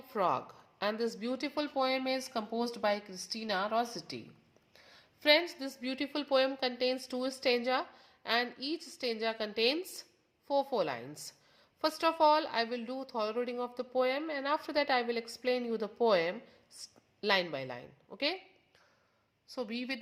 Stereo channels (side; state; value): both; identical; correlation 1.00